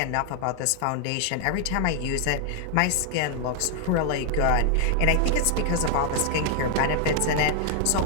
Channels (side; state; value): both; different; correlation 0.00